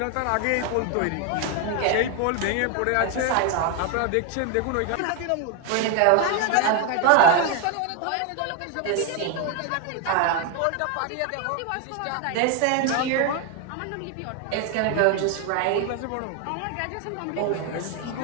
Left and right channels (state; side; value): different; both; correlation 0.01